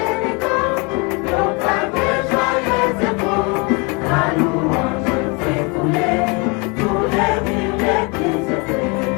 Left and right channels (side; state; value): right; quieter; 30.3 dB